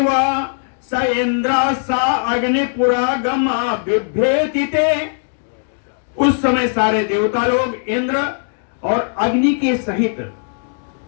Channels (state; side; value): silent; right; digital silence